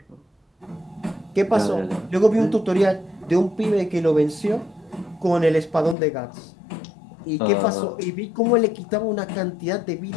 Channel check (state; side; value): drops out; right; at 6.0 s